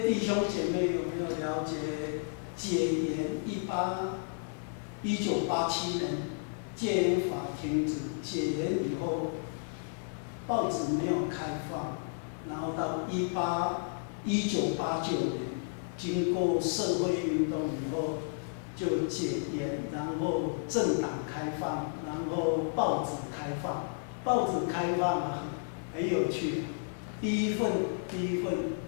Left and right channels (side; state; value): right; silent; digital silence